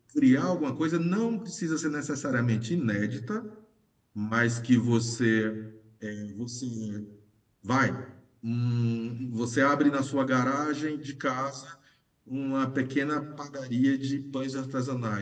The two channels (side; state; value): both; identical; correlation 1.00